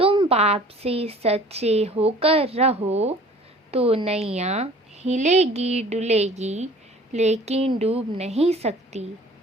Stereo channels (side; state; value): both; normal; correlation 0.49